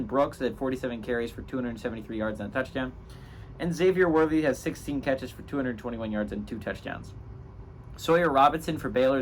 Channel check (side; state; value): both; identical; correlation 1.00